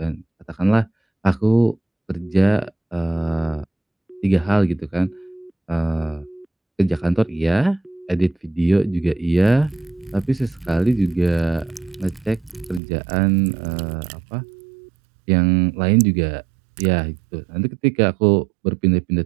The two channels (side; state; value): left; drops out; at 12.8 s